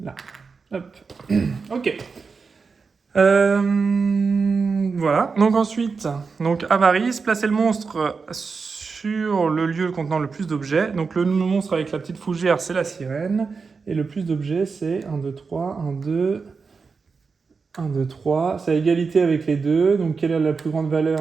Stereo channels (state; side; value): quieter; left; 4.9 dB